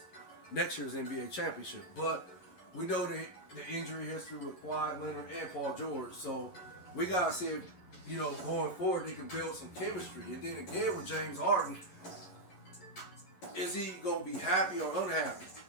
next year's NBA championship. But we know the injury history with Kawhi Leonard and Paul George, so we gotta see if, going forward they can build some chemistry. And then again with James Harden, is he gonna be happy or unhappy,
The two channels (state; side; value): late; right; 11 ms